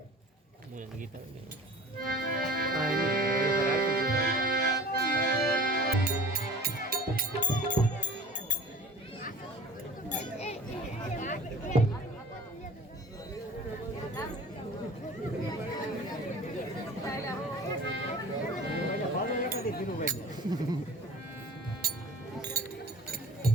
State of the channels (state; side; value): normal; both; correlation 0.42